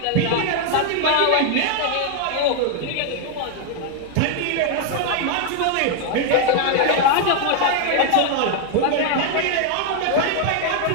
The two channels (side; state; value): both; different; correlation 0.00